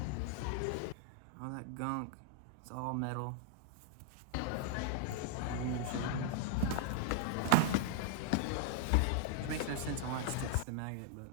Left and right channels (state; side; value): different; both; correlation 0.00